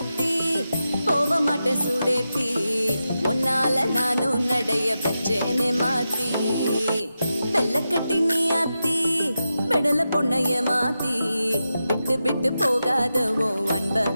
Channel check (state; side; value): inverted; both; correlation -0.90